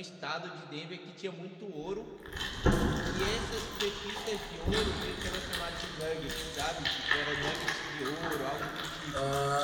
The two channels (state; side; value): identical; both; correlation 1.00